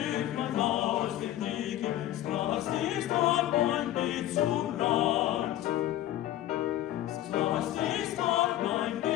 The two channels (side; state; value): right; quieter; 13.5 dB